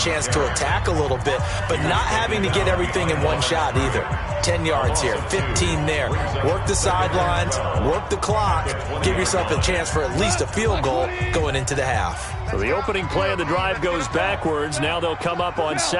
to attack a little bit, but not having to get everything in one shot either. 10 yards here, 15 there. Work the sidelines, work the clock, give yourself a chance for at least a field goal going into the half. So the opening play of the drive goes backwards. Now they'll come up on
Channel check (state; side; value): identical; both; correlation 1.00